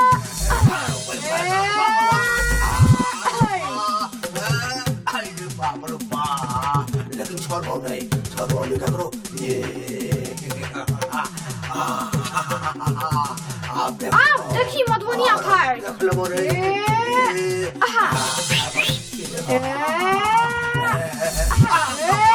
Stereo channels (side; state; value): both; identical; correlation 1.00